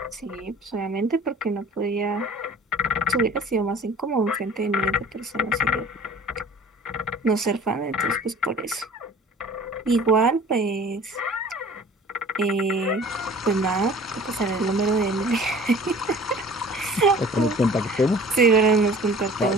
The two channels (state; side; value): normal; both; correlation 0.47